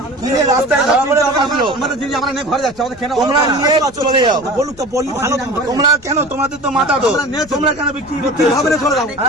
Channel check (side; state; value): left; noise; rumble, 22 dB below the sound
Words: কিনে রাস্তায় তোমরা নিয়ে চলে যাও। তোমরা কেন, তোমাদের তো মাথা তো, তোমরা কেন বিক্রি করতে হবে?